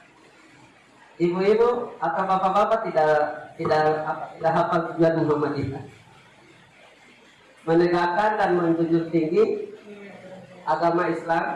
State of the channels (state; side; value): identical; both; correlation 1.00